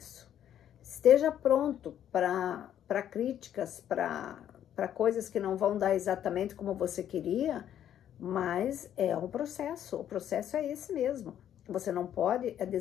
Esteja pronto para críticas, para coisas que não vão dar exatamente como você queria, mas é um processo, o processo é esse mesmo. Você não pode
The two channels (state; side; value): quieter; right; 10.4 dB